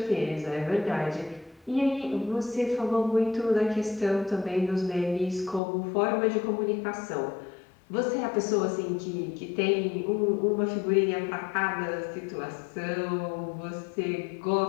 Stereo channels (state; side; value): drops out; right; at 5.6 s